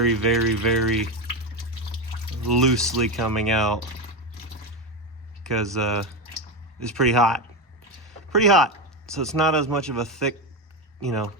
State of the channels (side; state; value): both; normal; correlation 0.14